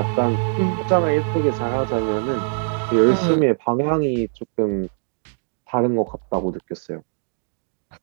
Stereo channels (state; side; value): silent; left; 61 dB below the other